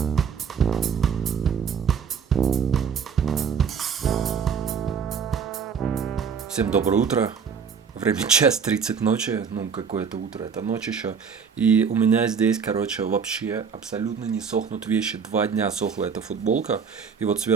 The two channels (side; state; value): left; quieter; 6.4 dB